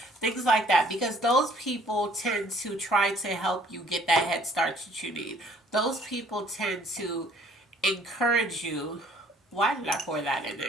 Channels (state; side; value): normal; both; correlation 0.59